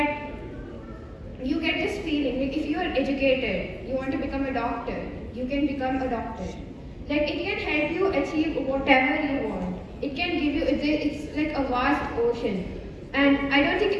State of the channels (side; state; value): both; identical; correlation 1.00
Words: you get this feeling like if you are educated, you want to become a doctor, you can become a doctor. Like it can help you achieve whatever you want. It can give you, it's like a vast ocean. And I don't